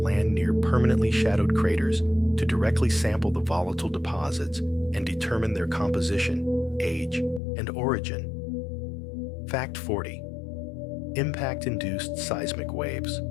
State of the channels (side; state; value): right; drops out; at 7.4 s